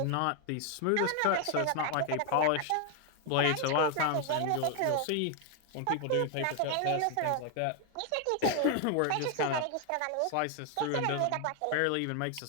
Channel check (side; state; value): both; different; correlation 0.00